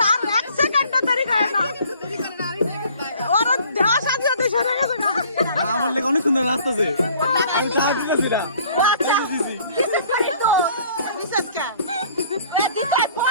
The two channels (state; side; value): inverted; both; correlation -0.55